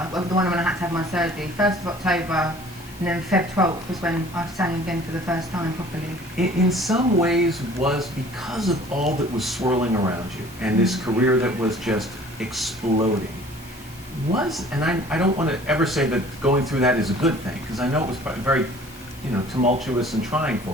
well, the one when I had to have my surgery, 1st of October, and then Feb 12th was when I sang again for the first time properly. In some ways was because of all that was swirling around you and this career that was just exploding. And I don't want to ever say that going through that is a good thing, because I know it was very, tumultuous and trying for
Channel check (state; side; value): normal; both; correlation 0.50